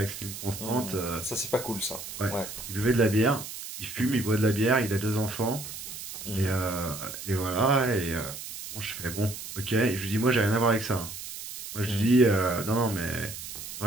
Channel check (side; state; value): right; noise; hiss, 10 dB below the sound